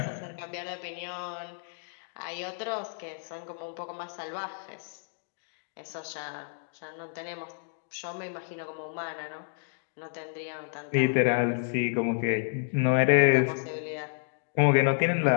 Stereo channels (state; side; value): silent; right; digital silence